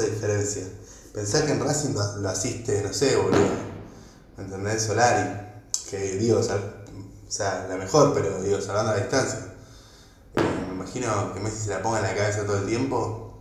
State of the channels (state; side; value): identical; both; correlation 1.00